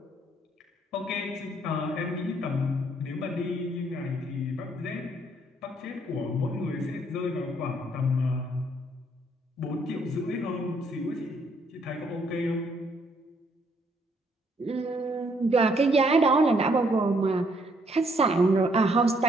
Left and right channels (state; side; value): normal; both; correlation 0.68